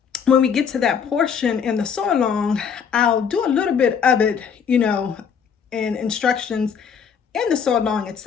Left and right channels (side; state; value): right; quieter; 7.0 dB